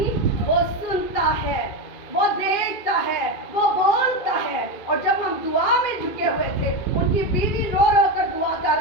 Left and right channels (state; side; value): late; right; 2.5 ms